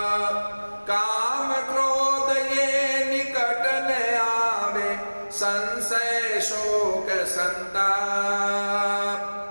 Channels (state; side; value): inverted; both; correlation -1.00